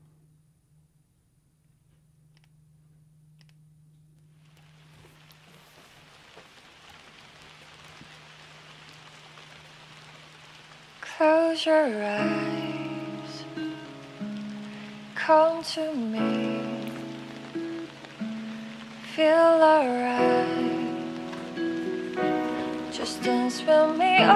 Close your eyes, come to me, feel alright, just dance with me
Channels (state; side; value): identical; both; correlation 1.00